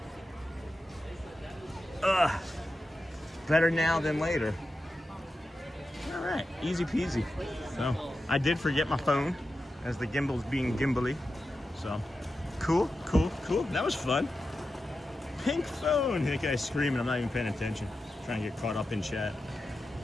though. Better now than later. All right, easy peasy. So, I did forget my phone, as the gimbal's being gimbally. So, cool. That was fun. Pink phone. That guy's screaming. I'm not even paying attention. Trying to get caught up in chat.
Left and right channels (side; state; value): both; normal; correlation 0.91